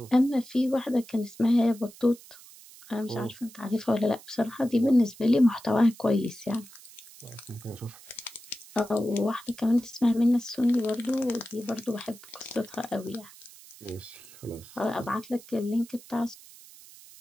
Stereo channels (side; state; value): right; noise; hiss, 20 dB below the sound